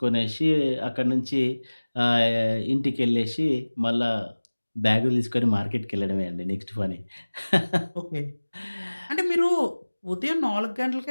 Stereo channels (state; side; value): inverted; both; correlation -1.00